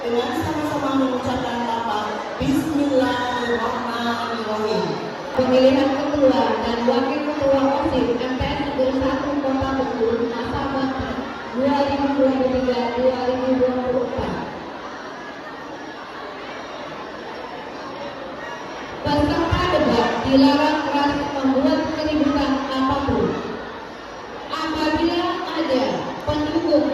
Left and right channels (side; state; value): both; identical; correlation 1.00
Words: sama-sama mengucapkan lafaz Bismillahirrahmanirrahim. Pemilihan ketua dan wakil ketua OSIS MTS Negeri 1 Kota Bengkulu masa bakti 2023-2024. Peserta debat dilarang keras membuat keributan apapun. Apabila ada pendukung